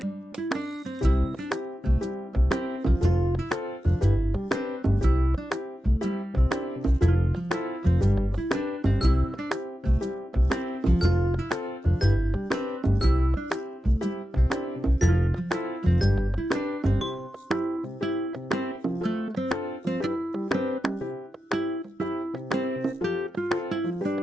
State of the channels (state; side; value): normal; both; correlation 0.91